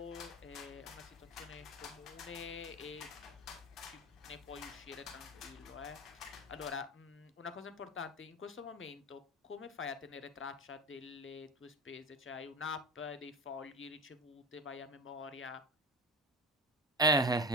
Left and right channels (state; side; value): normal; both; correlation 0.28